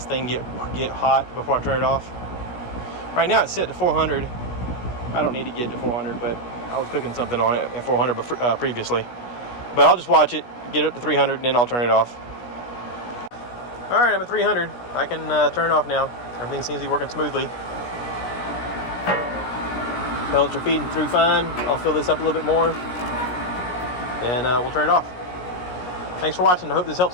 thing get hot before I turn it off. Right now it's set to 400. I don't need to get to 400, but I was cooking something on it at 400 previously. But I'll just watch it, get it up to 300, and then I'll turn it off. All right, I'm at 300. I can turn it off now. Everything seems to be working smoothly. Pellets are feeding through fine. I'll fill this up a little bit more, and we'll turn it off. Thanks for watching. I hope this helps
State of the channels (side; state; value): right; late; 17 ms